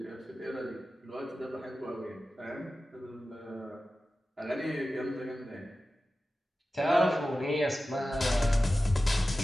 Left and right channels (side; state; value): both; normal; correlation 0.95